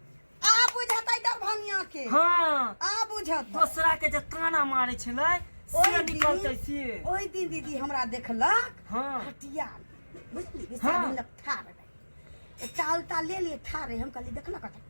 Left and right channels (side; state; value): both; inverted; correlation -1.00